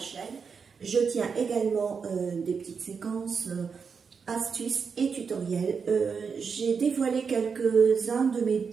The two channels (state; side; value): quieter; left; 5.8 dB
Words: chaîne. Je tiens également des petites séquences, astuces et tutoriels. J'ai dévoilé quelques-uns de mes